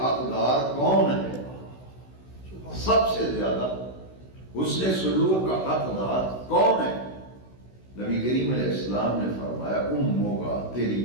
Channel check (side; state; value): right; late; 16 ms